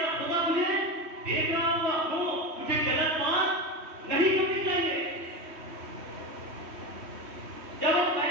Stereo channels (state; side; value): late; left; 3.2 ms